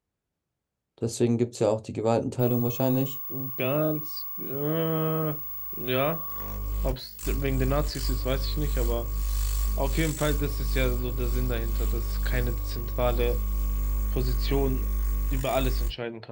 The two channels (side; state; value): both; identical; correlation 1.00